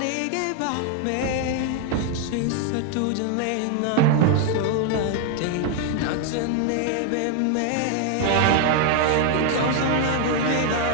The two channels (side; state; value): both; different; correlation 0.00